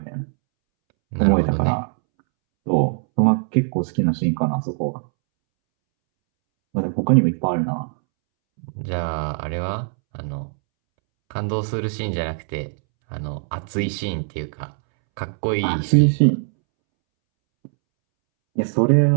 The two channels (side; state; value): left; silent; 65 dB below the other